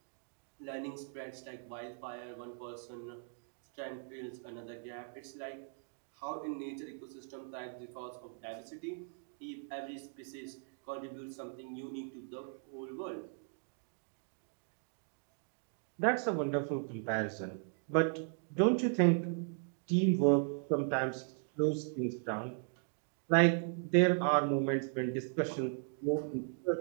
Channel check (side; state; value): left; silent; 53 dB below the other